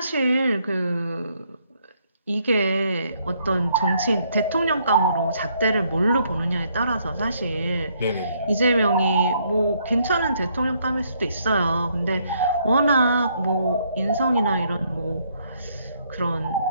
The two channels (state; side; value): inverted; both; correlation -0.70